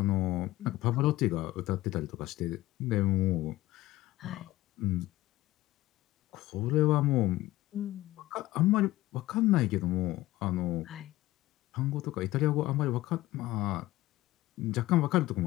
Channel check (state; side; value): quieter; right; 17.1 dB